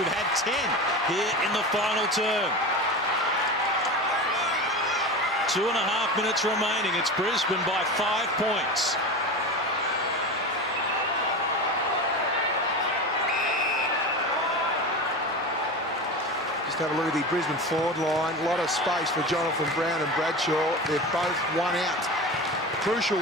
had 10 here in the final term. 2.5 minutes remaining. It's Brisbane by 5 points. Just have a look at the Brisbane forward line. A lot of space for Jonathan Brown and Bradshaw. They're both one out. Crucial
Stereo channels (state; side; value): normal; both; correlation 0.27